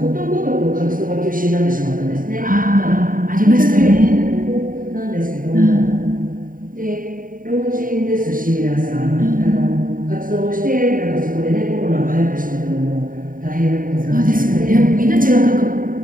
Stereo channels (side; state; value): left; late; 0.40 ms